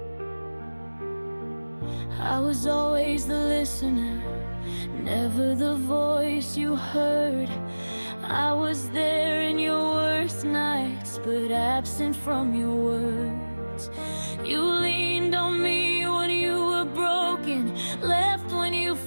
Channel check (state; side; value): inverted; both; correlation -1.00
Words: I was always the listener, never the voice you heard. I was there in your worst nights, but absent from your words. You leaned on me when you were broken, left when you